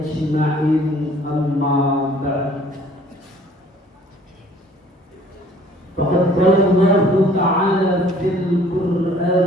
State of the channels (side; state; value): both; normal; correlation 0.55